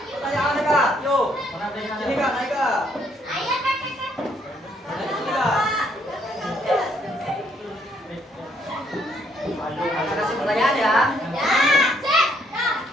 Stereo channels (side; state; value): both; normal; correlation 0.69